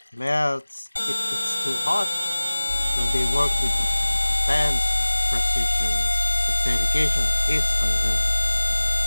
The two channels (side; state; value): both; inverted; correlation -1.00